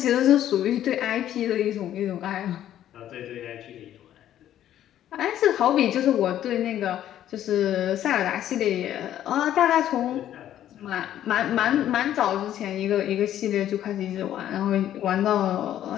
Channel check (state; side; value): quieter; right; 11.6 dB